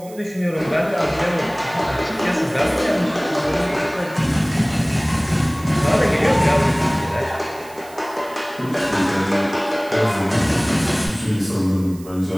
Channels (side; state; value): right; noise; hiss, 22 dB below the sound